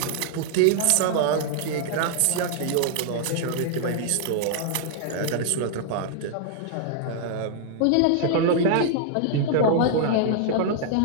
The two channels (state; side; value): different; both; correlation -0.01